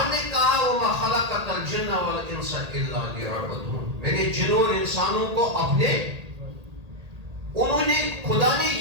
نے کہا وَمَا خَلَقَتَ الْجِنَّ وَالْإِنسَ إِلَّا لِيَعْبُدُونِ، میں نے جنوں اور انسانوں کو اپنے، انہوں نے، خدا نے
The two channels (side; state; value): left; late; 1.8 ms